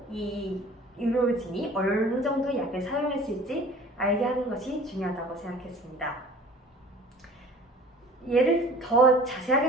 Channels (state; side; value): normal; both; correlation 0.46